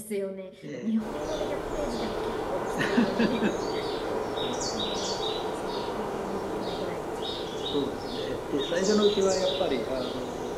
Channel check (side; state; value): both; identical; correlation 1.00